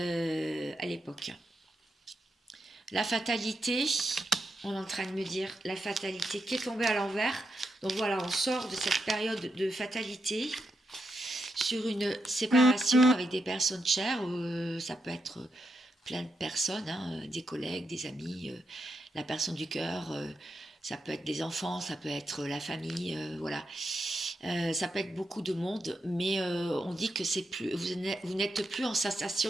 l'époque. La fatalité, on est en train de me dire la fatalité qui est tombée à l'envers. Donc voilà, on sort de cette période de fatalité sur une séparation avec des personnes chères. Ça peut être plein de personnes, hein, des collègues, des amis, la personne du cœur. Ça peut être des enfants, ça peut être la famille, voilà. Ça peut être beaucoup de monde, mais on dit que c'est plus, vous n'êtes plus en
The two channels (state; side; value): normal; both; correlation 0.84